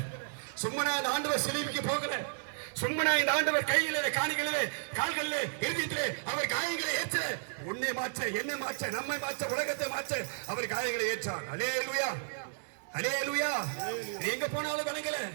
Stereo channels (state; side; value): silent; left; digital silence